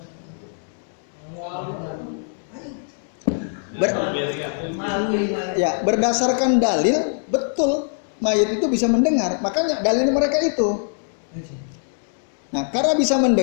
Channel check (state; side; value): silent; right; digital silence